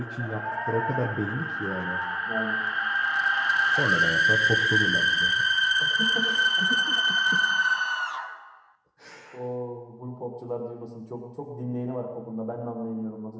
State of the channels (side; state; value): both; identical; correlation 1.00